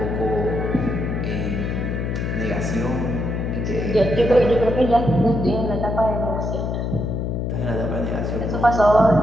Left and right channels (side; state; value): left; noise; hum, 2 dB below the sound